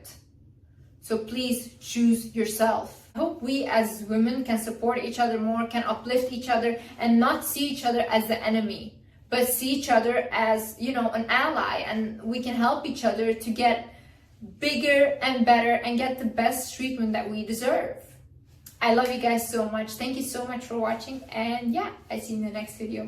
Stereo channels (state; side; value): identical; both; correlation 1.00